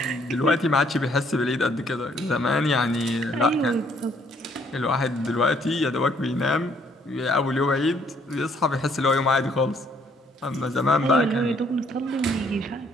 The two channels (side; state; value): both; normal; correlation 0.65